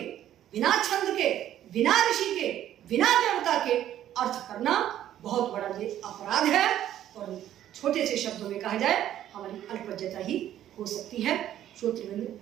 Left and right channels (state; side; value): quieter; left; 11.8 dB